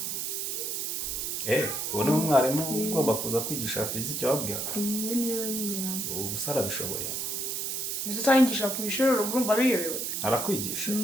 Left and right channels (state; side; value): noise; right; hiss, 2 dB below the sound